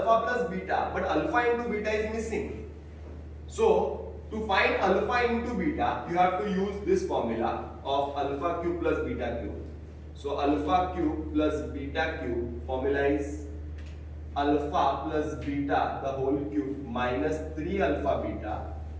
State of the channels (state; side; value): identical; both; correlation 1.00